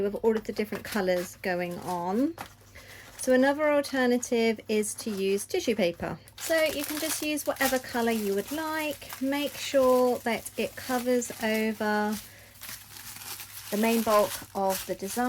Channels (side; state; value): both; identical; correlation 1.00